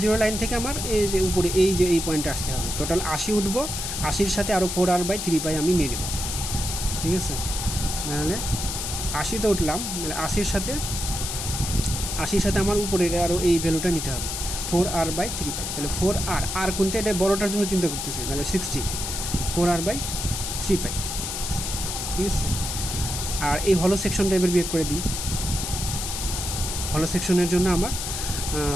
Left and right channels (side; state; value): left; noise; hiss, 4 dB below the sound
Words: 0 লাইন থেকে আমার এই যে উপরে এই পয়েন্টে আসতে হবে। টোটাল 80 উঠবো, 80-র সাথে আরও 4r বাই 3 পাই আমি নিয়ে নেব। ঠিক আছে, তাহলে 80-তে উঠলাম, তাহলে 80-র সাথে আমার উপরের আরও এই ভ্যালুটা নিতে হবে 4r বাই 3 পাই। তাহলে 4r কোনটা, এটা বড়টার জন্য চিন্তা করতেছি, তাহলে 60 4r বাই 3 পাই। ঠিক আছে, আর এই হলো সেকশনটা এবার বিয়োগ করে দিই। হলো সেকশনের জন্য আমার